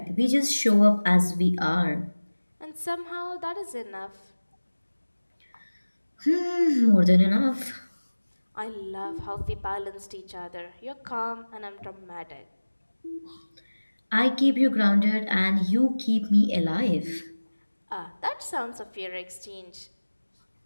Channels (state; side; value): inverted; both; correlation -1.00